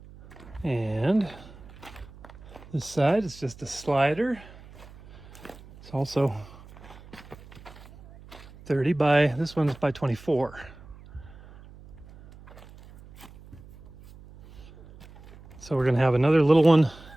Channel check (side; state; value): right; noise; hum, 20 dB below the sound